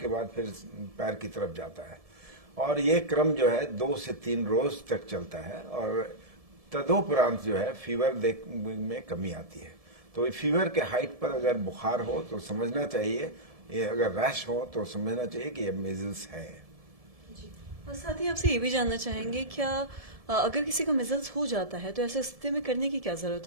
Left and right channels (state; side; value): late; left; 1.7 ms